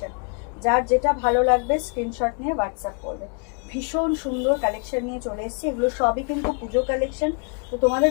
যার যেটা ভালো লাগবে স্ক্রিনশট নিয়ে হোয়াটসঅ্যাপ করবে। ভীষণ সুন্দর কালেকশন নিয়ে চলে এসেছি, এগুলো সবই কিন্তু পুজো কালেকশন। তো তোমাদের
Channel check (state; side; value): quieter; right; 38.8 dB